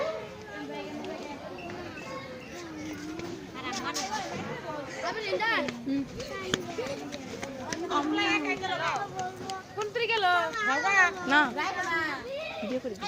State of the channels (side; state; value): both; identical; correlation 1.00